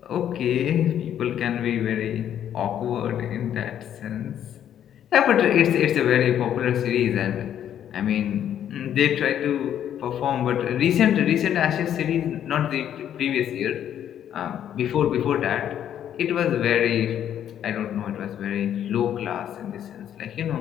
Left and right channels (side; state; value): right; quieter; 10.1 dB